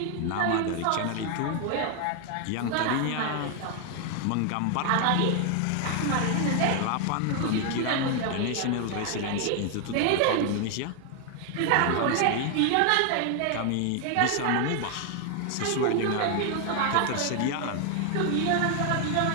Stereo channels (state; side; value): different; both; correlation 0.00